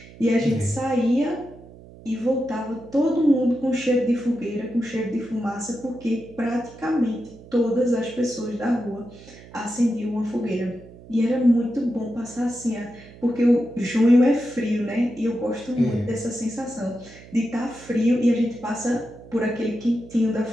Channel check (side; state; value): right; noise; hum, 20 dB below the sound